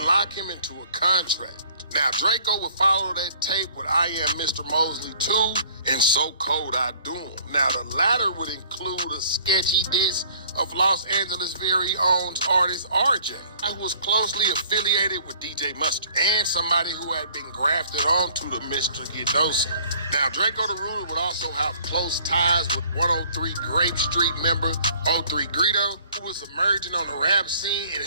lock him into a contract. Now, Drakeo would follow that tape with I Am Mr. Mosley 2 and So Cold I Do 'Em. Now, the latter would include a sketchy diss of Los Angeles' very own artist RJ, who was closely affiliated with DJ Mustard and somebody who had been grafted onto the Mr. Get Dough scene. Now, Drakeo the Ruler would also have close ties with 103 Grape Street member 03 Greedo, who was emerging on the rap scene and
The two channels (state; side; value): inverted; both; correlation -0.56